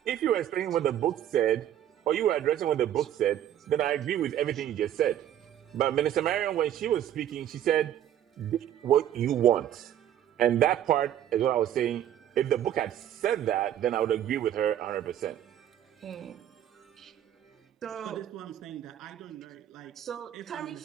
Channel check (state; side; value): quieter; left; 11.0 dB